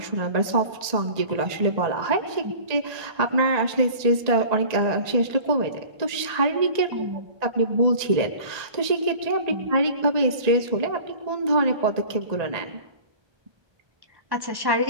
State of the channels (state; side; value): late; left; 1.8 ms